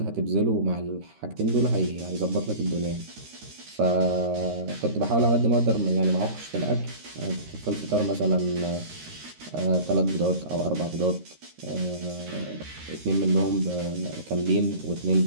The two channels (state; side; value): late; left; 13 ms